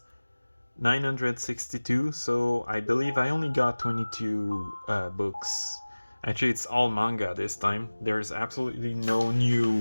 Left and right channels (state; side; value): inverted; both; correlation -1.00